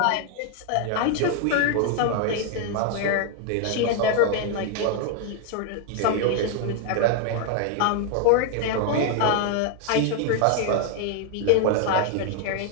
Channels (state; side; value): different; both; correlation 0.00